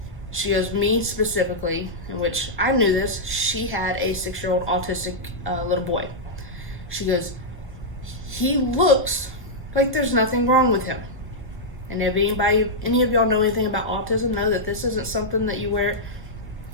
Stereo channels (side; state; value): both; normal; correlation -0.08